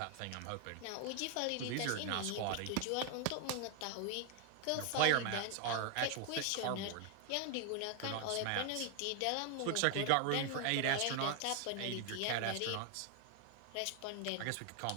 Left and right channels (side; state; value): both; different; correlation 0.00